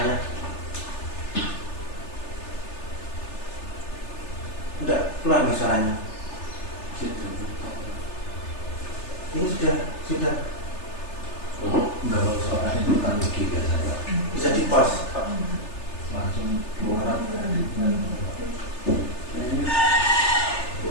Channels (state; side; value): late; right; 3.3 ms